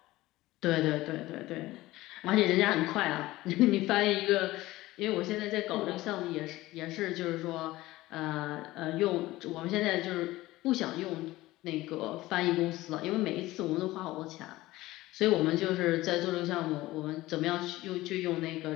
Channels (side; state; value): right; quieter; 17.8 dB